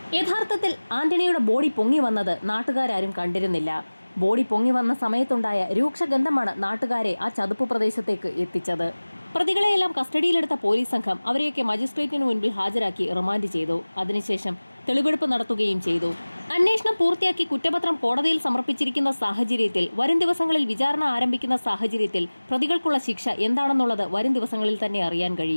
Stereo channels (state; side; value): inverted; both; correlation -1.00